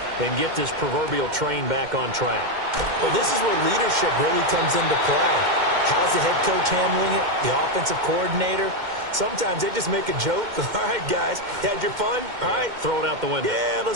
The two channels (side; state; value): left; late; 2.1 ms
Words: and get this proverbial train back on track? Well, this is where leadership really comes into play. How's the head coach handling it? The offensive coordinator? Sometimes they just make a joke. All right, guys, had your fun? All right. Throw it out the window. Yeah,